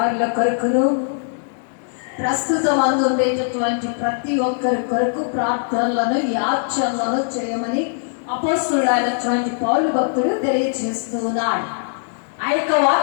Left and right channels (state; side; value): silent; right; 65 dB below the other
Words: కొరకును, ప్రస్తుతం అందుండేటటువంటి ప్రతి ఒక్కరి కొరకు ప్రార్థనలను, యాచనలను చేయమని అపోస్తలుడైనటువంటి పౌలు భక్తుడు తెలియజేస్తూ ఉన్నాడు. ఆ యొక్క